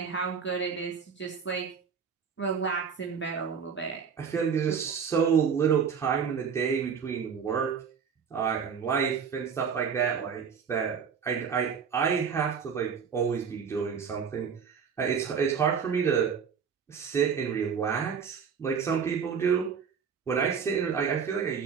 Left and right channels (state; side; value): quieter; left; 6.7 dB